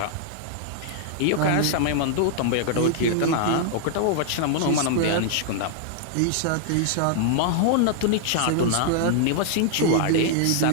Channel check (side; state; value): both; different; correlation -0.01